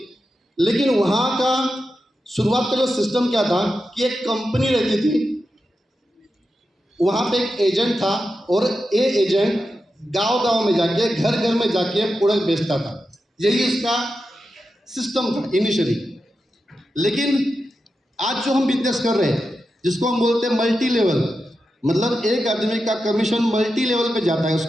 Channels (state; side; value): normal; both; correlation 0.89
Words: लेकिन वहाँ का शुरुआत का जो सिस्टम क्या था कि एक कंपनी रहती थी, वहाँ पे एक एजेंट था और ये एजेंट गांव-गांव में जाके, घर-घर में जाके प्रोडक्ट बेचता था। यही इसका सिस्टम था इनिशियली। लेकिन आज जो हम बिजनेस कर रहे हैं, जिसको हम बोलते हैं मल्टी लेवल, मतलब एक आदमी का कमीशन मल्टी लेवल पे जाता है,